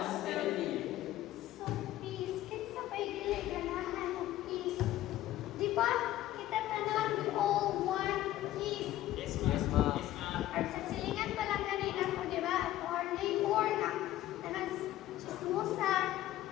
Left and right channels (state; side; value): quieter; right; 14.3 dB